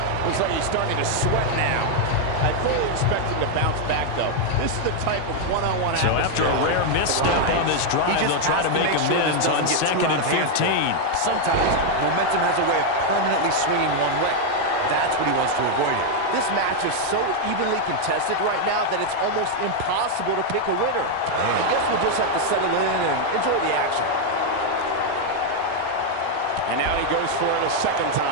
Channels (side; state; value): both; different; correlation 0.00